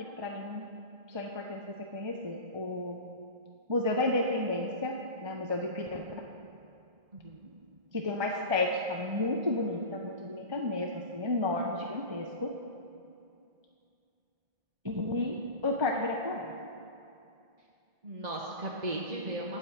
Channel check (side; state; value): left; late; 1.7 ms